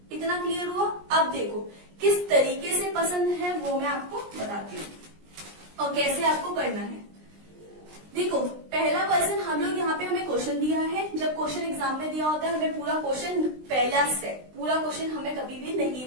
इतना क्लियर हुआ? अब देखो किस तरीके से पसंद है वो मैं आपको बताती हूँ और कैसे आपको करना है। देखो पहला पर्सन हम लोग यहाँ पे हमें क्वेश्चन दिया है, जब क्वेश्चन एग्जाम में दिया होता है हमें पूरा क्वेश्चन पहला स्टेप पूरा क्वेश्चन हमें कभी भी नहीं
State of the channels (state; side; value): late; left; 20 ms